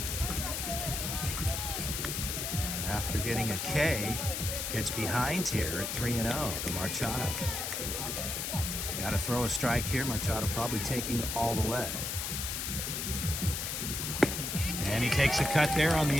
After getting a K, gets behind here at 3-0 to Machado. Got to throw a strike here. Machado probably taking all the way. And he takes a cut there on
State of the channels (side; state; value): left; noise; hiss, 3 dB below the sound